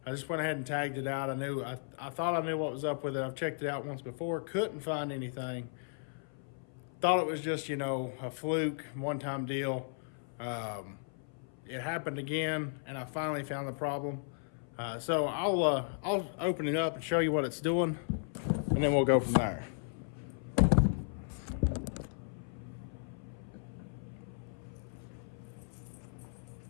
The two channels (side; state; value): right; silent; 54 dB below the other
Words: I just went ahead and tagged it out. I thought I knew what was up with it. I've checked it out once before, couldn't find anything. Thought it was just, a fluke, one-time deal. It happened again, and I finally found the problem. So I'll open it up and show you what it's doing, and then we'll go from there.